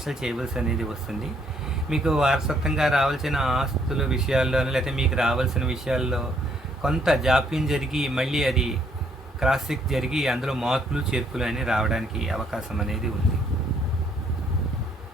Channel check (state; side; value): normal; both; correlation 0.68